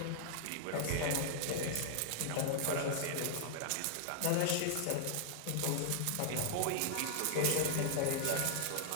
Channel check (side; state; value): both; different; correlation -0.01